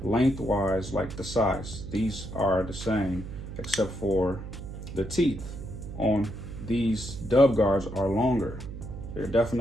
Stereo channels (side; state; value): right; noise; hum, 10 dB below the sound